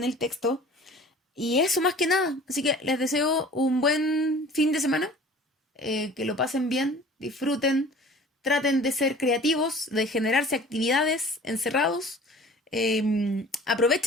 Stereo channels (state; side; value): normal; both; correlation 0.46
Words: texto. Y eso más que nada. Así que les deseo un buen fin de semana, que lo pasen bien, disfruten, traten de ser creativos, de generarse actividades encerrados.